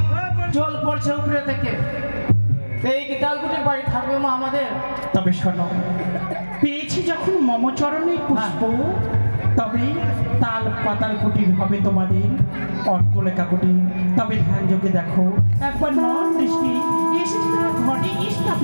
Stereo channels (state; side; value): inverted; both; correlation -1.00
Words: জল পড়ছে উপরে থেকে, এই কি তালকুটির বাড়ি থাকবে মা আমাদের? তবে শোনো, পেয়েছি যখন মমচরণের পুষ্প, তবে তাল পাতাল কুটির হবে তোমাদের অট্টলেখা কুটির। তবে ধ্যান যোগে দেখো, একবার নন দৃষ্টি এসেছে তার ঘটে